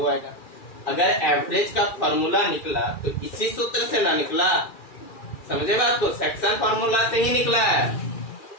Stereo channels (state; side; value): late; right; 2.4 ms